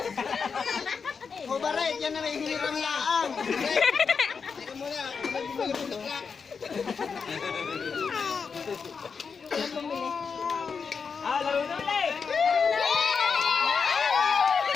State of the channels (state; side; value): quieter; right; 5.7 dB